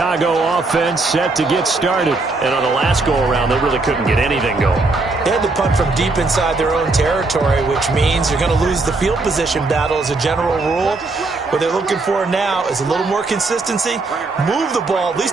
offense set to get started. And on the last go-around, they really couldn't get anything going. They had to punt from deep inside their own territory, which means you're going to lose the field position battle as a general rule. What they're looking for now is a little more consistency, move the ball at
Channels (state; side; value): quieter; left; 3.5 dB